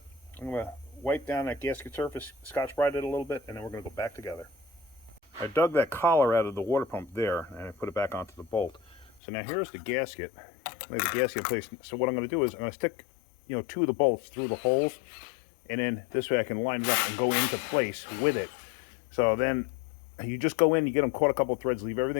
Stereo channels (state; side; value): drops out; right; at 9.2 s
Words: going to wipe down that gasket surface, Scotch-Brite it a little bit, and then we're going to go back together. I dug that collar out of the water pump there, and I put it back onto the bolt. So now here's the gasket. Lay the gasket in place. So what I'm going to do is I'm going to stick, you know, 2 of the bolts through the holes, and then this way I can line it up and go into place with it. So then you just go in, you get them caught a couple of threads, leave